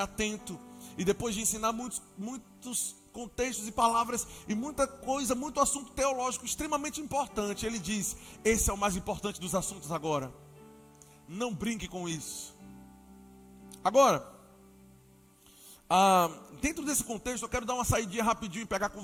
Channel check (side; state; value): both; normal; correlation 0.97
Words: E depois de ensinar muitos contextos e palavras e muita coisa, muito assunto teológico extremamente importante, ele diz, esse é o mais importante dos assuntos agora. Não brinque com isso. Agora, dentro desse contexto, eu quero dar uma saidinha rapidinho e pegar com